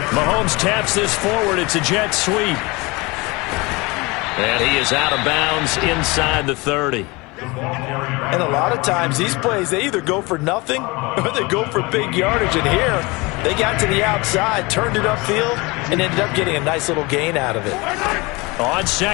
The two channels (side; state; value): right; quieter; 25.0 dB